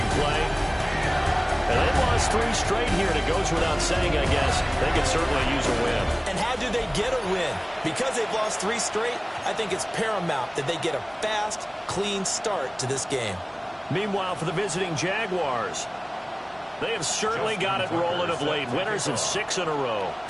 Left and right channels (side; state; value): both; identical; correlation 1.00